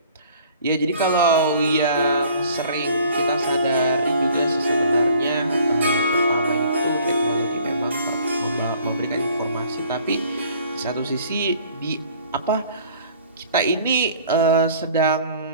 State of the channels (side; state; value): both; inverted; correlation -0.53